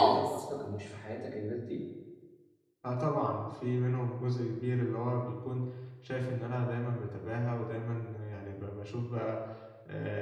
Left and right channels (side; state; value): both; identical; correlation 1.00